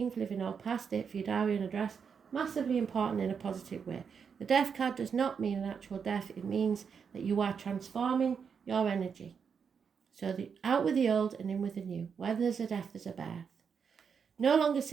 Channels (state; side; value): quieter; left; 6.5 dB